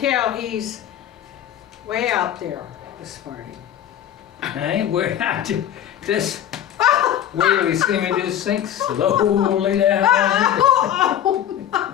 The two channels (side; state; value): right; quieter; 10.6 dB